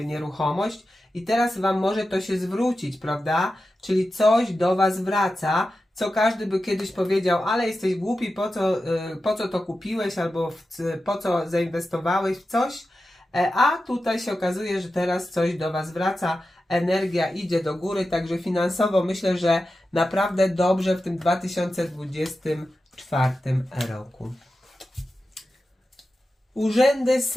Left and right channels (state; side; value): normal; both; correlation 0.92